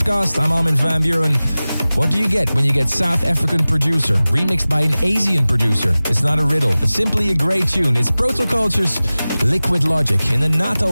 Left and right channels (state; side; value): inverted; both; correlation -0.98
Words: I'm Armin van Buuren. What do you get when you get South African producer remixed by an Asian producer? It's not a riddle. It's simply a great tune. It's Protoculture's Liquid Logic in the